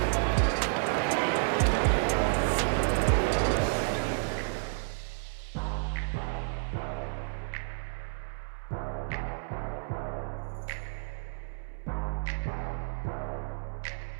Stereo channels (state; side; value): silent; left; digital silence